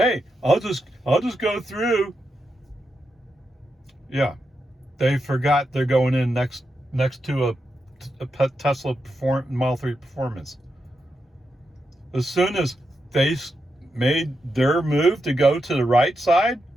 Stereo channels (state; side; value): normal; both; correlation 0.86